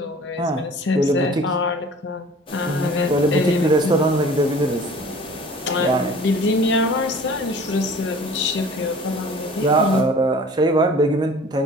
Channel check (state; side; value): normal; both; correlation 0.47